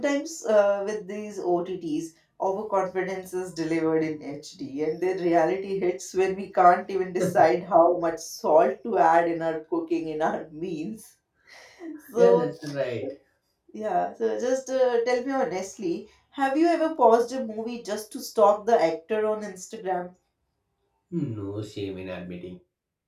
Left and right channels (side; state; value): both; identical; correlation 1.00